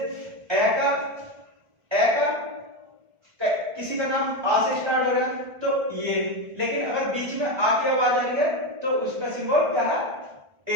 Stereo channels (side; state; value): left; late; 1.5 ms